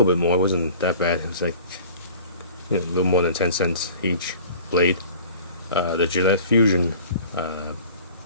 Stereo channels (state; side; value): inverted; both; correlation -0.45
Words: bit more. It wasn't that bad. It was like a little more than 10 cents each blade. The Gillette Fusion